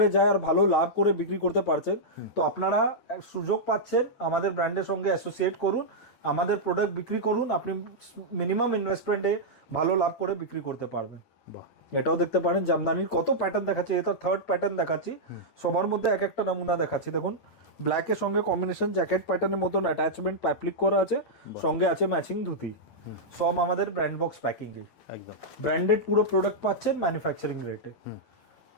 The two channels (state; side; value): late; right; 8.9 ms